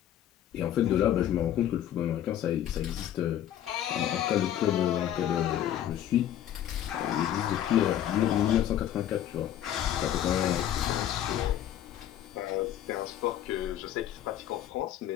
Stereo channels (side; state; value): right; quieter; 11.3 dB